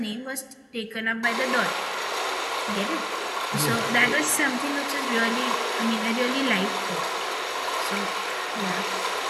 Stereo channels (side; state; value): both; identical; correlation 1.00